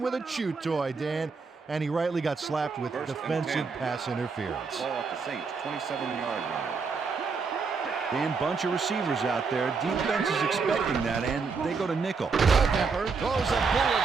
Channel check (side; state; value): left; quieter; 4.9 dB